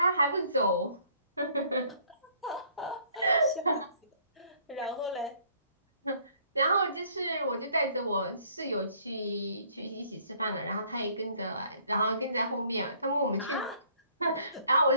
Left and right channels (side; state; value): both; inverted; correlation -0.61